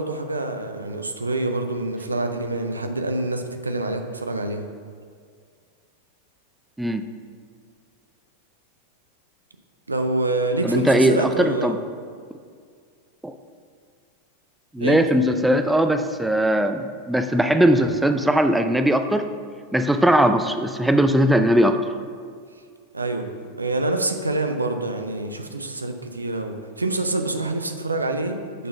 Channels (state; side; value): normal; both; correlation 0.45